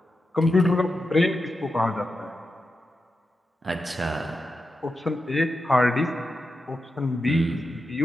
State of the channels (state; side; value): normal; both; correlation 0.89